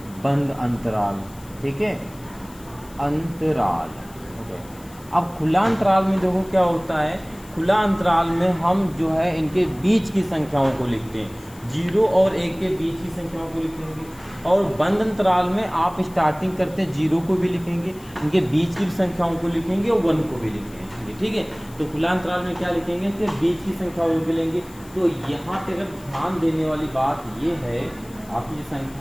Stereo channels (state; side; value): noise; left; hiss, 23 dB below the sound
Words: बंद अंतराल। ठीक है, अंतराल। ओके, अब खुला अंतराल में देखो क्या होता है, खुला अंतराल में हम जो है इनके बीच की संख्याओं को लिखते हैं, 0 और 1 के बीच की संख्याओं को लिखेंगे। और बंद अंतराल में आप स्टार्टिंग करते हैं 0 को भी लिखेंगे, इनके बीच की संख्याओं को लिखेंगे और 1 को भी लिखेंगे। ठीक है, तो खुला अंतराल में क्या लिखेंगे, इसके बीच की संख्याओं को लिखेंगे। तो यहाँ पे अगर ध्यान देने वाली बात ये है, आपकी जो